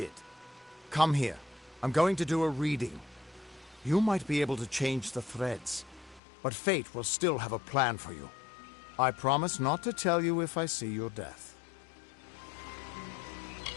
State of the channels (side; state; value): right; drops out; at 6.2 s